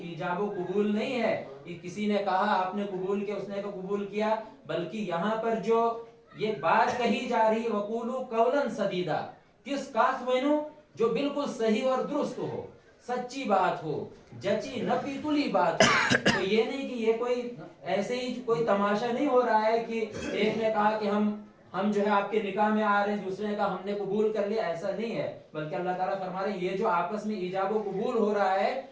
ایجاب و قبول نہیں ہے کہ کسی نے کہا آپ نے قبول کیا، اس نے قبول کیا، بلکہ یہاں پر جو یہ بات کہی جا رہی ہے وقولوا قولا سدیدا، کس بات وینو جو بالکل صحیح اور درست ہو، سچی بات ہو، جچی نپی تلی بات ہو. تو یہ نہیں کہ یہ کوئی ایسے ہی کوئی تماشا نہیں ہو رہا ہے کہ ایک نے کہا کہ ہم جو ہے آپ کے نکاح میں آ رہے ہیں، دوسرے نے کہا ہم نے قبول کر لیا. ایسا نہیں ہے، بلکہ اللہ تعالیٰ فرما رہے ہیں یہ جو آپس میں ایجاب و قبول ہو رہا ہے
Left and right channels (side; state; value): both; identical; correlation 1.00